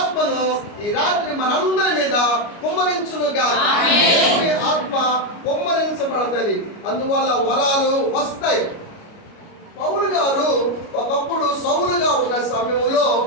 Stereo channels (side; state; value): right; late; 29 ms